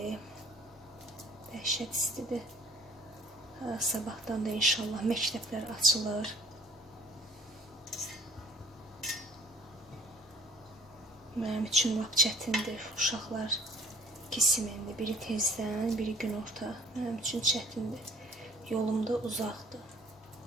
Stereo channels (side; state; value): both; normal; correlation 0.55